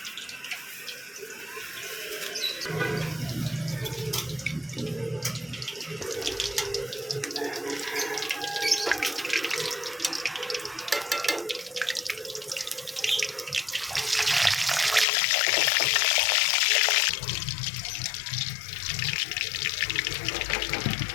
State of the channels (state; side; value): drops out; right; at 15.1 s